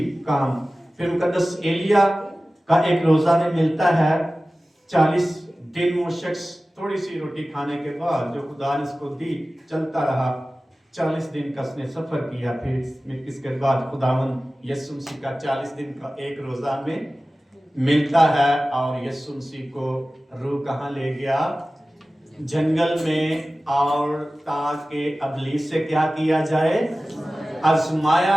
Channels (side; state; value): both; normal; correlation 0.96